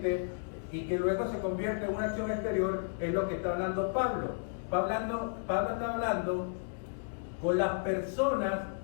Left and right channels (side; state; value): right; silent; digital silence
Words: y que luego se convierte en una acción exterior es lo que está hablando Pablo. Pablo está hablando con las personas